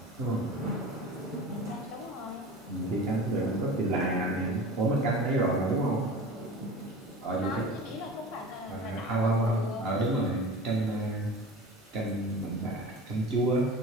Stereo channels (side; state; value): both; normal; correlation 0.36